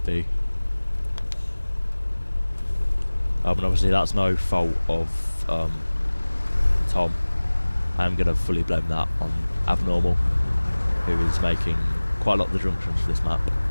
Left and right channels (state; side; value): inverted; both; correlation -1.00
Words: be. And obviously that's no fault of Tom. I am going to fully blame that on Abnormal, who is making quite a lot of the junctions for this map.